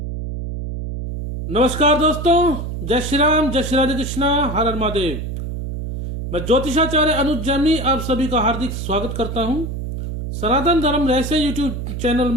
नमस्कार दोस्तों, जय श्री राम, जय श्री राधे कृष्णा, हर हर महादेव। मैं ज्योतिषाचार्य अनुज जैमिनी आप सभी का हार्दिक स्वागत करता हूं। सनातन धर्म रहस्य यूट्यूब चैनल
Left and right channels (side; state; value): right; noise; hum, 5 dB below the sound